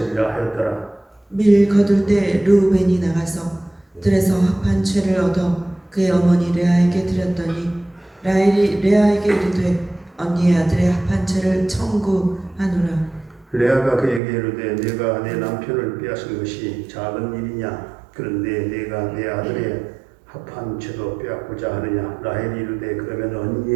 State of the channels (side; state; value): left; drops out; at 14.2 s